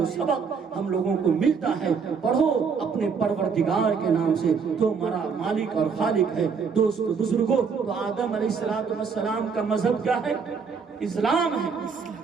سبق ہم لوگوں کو ملتا ہے پڑھو اپنے پروردگار کے نام سے تو ہمارا مالک اور خالق ہے. دوست بزرگوں، تو آدم علیہ السلام کا مذہب کیا ہے؟ اسلام ہے.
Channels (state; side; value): quieter; left; 5.8 dB